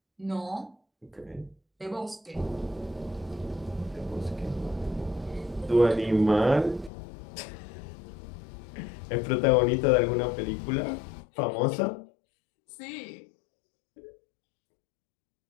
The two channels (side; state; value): right; drops out; at 6.9 s